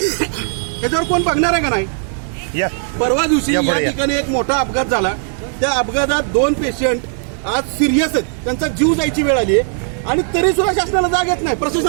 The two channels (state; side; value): silent; left; 67 dB below the other